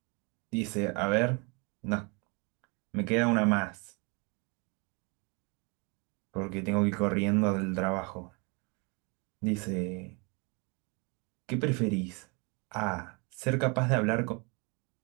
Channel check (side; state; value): left; quieter; 31.1 dB